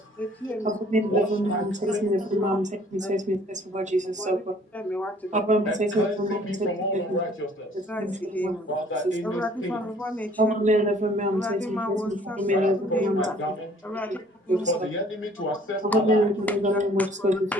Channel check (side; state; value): both; normal; correlation 0.56